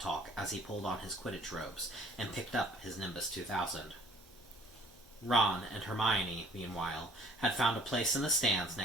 talk as he pulled on his Quidditch robes and picked up his Nimbus 2000. Ron and Hermione, meanwhile, had found a place in the stands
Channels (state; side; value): normal; both; correlation 0.57